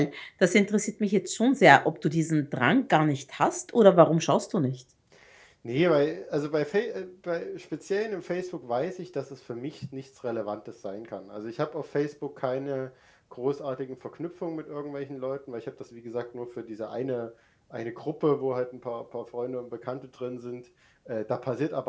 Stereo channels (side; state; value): both; identical; correlation 1.00